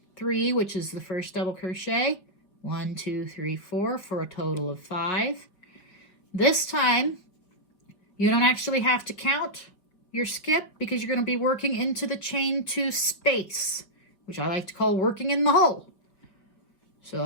3, which is the first double crochet. 1, 2, 3, 4 for a total of 5. This time, you don't actually have to count your skip because you're going to be working into the chain 2 space, which I like to call working in the hole.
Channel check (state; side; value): late; right; 4.8 ms